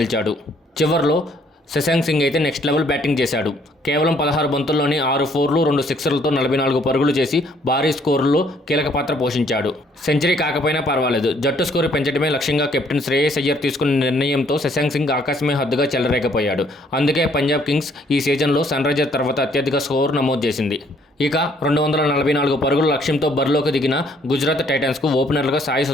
చివర్లో శశాంక్ సింగ్ అయితే నెక్స్ట్ లెవెల్ బ్యాటింగ్ చేశాడు. కేవలం 16 బంతుల్లోనే 6 ఫోర్లు 2 సిక్సర్లతో 44 పరుగులు చేసి భారీ స్కోరులో కీలక పాత్ర పోషించాడు. సెంచరీ కాకపోయినా పర్వాలేదు, జట్టు స్కోరు పెంచడమే లక్ష్యంగా కెప్టెన్ శ్రేయస్ అయ్యర్ తీసుకున్న నిర్ణయంతో శశాంక్ సింగ్ ఆకాశమే హద్దుగా చెలరేగిపోయాడు. అందుకే పంజాబ్ కింగ్స్ ఈ సీజన్లో సన్ రైజర్స్ తర్వాత అత్యధిక స్కోరు నమోదు చేసింది. ఇక 244 పరుగుల లక్ష్యంతో బరిలోకి దిగిన గుజరాత్ టైటన్స్కు ఓపెనర్లుగా సాయి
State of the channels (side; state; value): both; normal; correlation 0.64